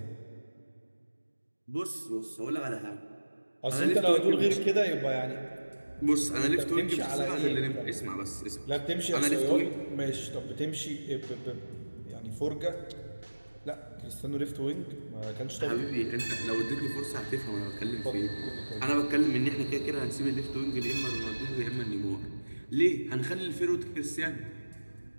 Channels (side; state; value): both; inverted; correlation -1.00